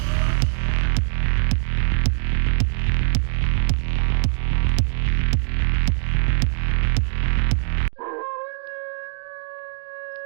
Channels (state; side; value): silent; left; 58 dB below the other